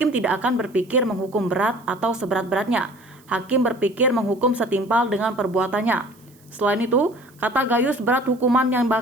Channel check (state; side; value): noise; right; hiss, 30 dB below the sound